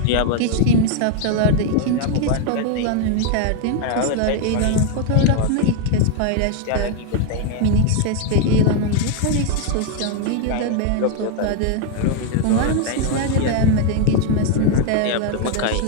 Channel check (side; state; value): both; different; correlation 0.00